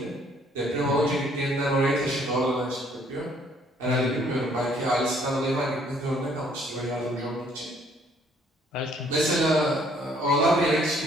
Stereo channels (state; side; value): normal; both; correlation 0.63